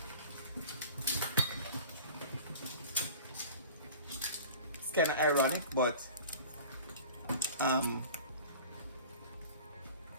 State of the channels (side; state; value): both; inverted; correlation -0.41